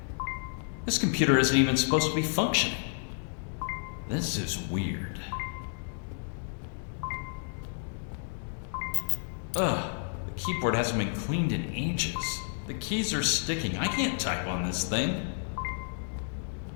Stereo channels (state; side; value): silent; right; digital silence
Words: This computer isn't even supposed to be functioning. This is weird. Ugh, the keyboard hasn't been cleaned in ages. The keys are sticking. I can't type on this thing.